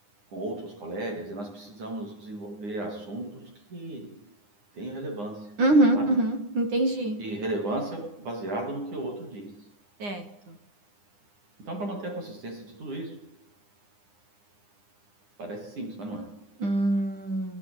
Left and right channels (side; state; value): left; late; 9.8 ms